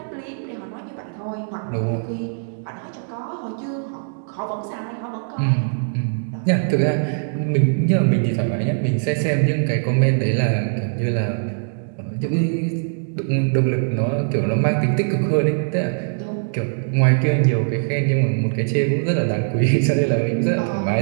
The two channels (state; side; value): silent; left; digital silence